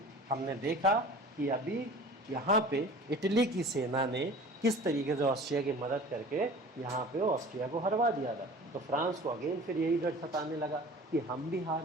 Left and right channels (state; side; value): normal; both; correlation 0.42